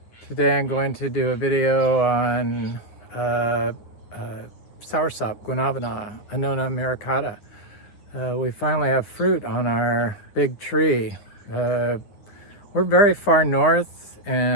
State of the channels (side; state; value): right; late; 9.9 ms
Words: Today I'm going to do a video on Soursop, Guanabana, Annona muricata. We finally have fruit on our big tree. We're very far north,